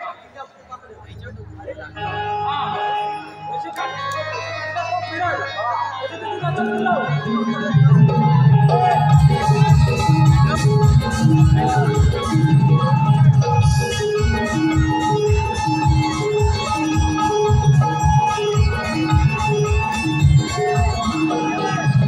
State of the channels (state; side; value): identical; both; correlation 1.00